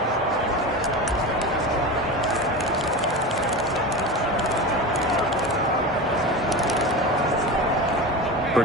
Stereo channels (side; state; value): both; normal; correlation 0.26